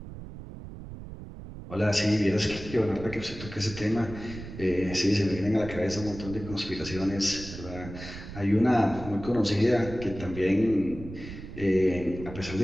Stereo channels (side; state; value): right; noise; rumble, 12 dB below the sound